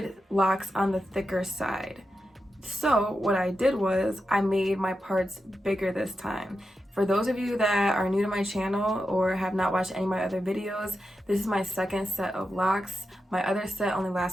locks on the thicker side. So what I did was I made my parts bigger this time. For those of you that are new to my channel or have not watched any of my other videos, this is my second set of locks. My other set only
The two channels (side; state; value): both; normal; correlation 0.89